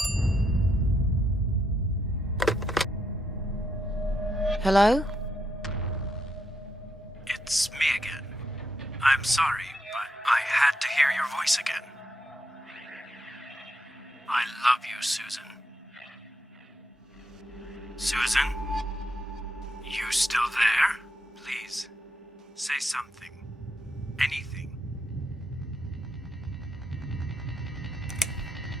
Hello? It's me again. I'm sorry, but I had to hear your voice again. I love you, Susan. Susan? You still there? Please, say something. Anything.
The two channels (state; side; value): normal; both; correlation 0.80